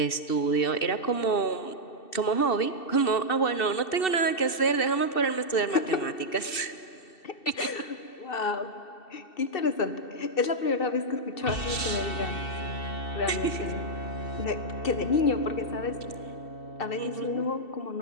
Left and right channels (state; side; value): late; right; 2.7 ms